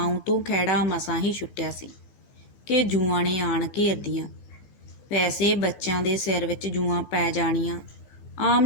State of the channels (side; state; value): right; late; 15 ms